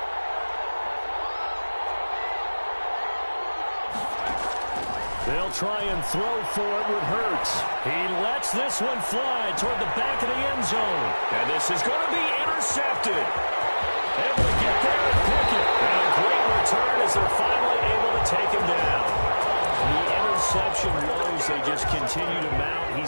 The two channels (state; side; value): inverted; both; correlation -1.00